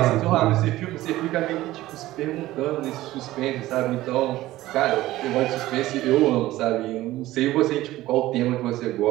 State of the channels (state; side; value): quieter; left; 16.3 dB